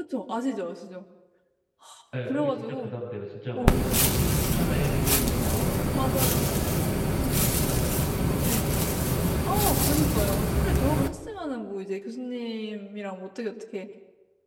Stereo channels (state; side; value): identical; both; correlation 1.00